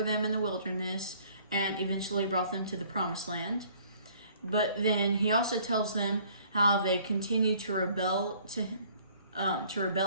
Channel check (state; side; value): inverted; both; correlation -0.57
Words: them in the wilderness, and eventually brought them to the promised land. But then he also tells them how they continue to rebel